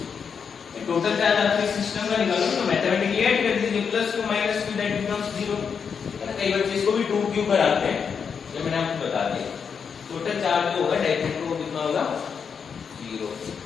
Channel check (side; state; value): right; quieter; 6.5 dB